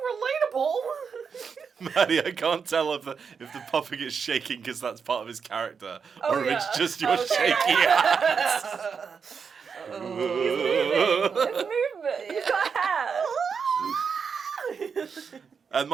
relatable. Maddie, I can't tell if the puppet is shaking because that's part of his character, or if it's just your shaky hands. It's movement. He's got hair. And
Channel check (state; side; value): quieter; left; 6.1 dB